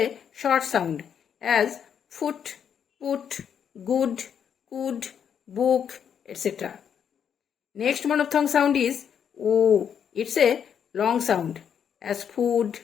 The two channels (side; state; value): right; quieter; 8.0 dB